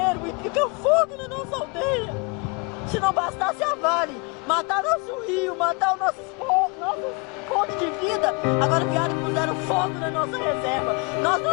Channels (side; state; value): right; quieter; 31.1 dB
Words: e fica fogo na nossa aldeia. Se não bastasse a Vale matar nosso rio, matar os nossos fontes de vida, agora vieram e puseram fogo na nossa reserva. Nós